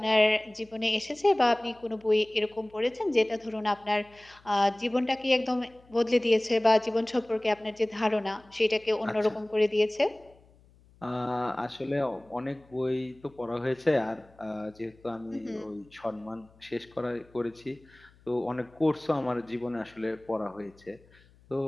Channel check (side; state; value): left; noise; hum, 28 dB below the sound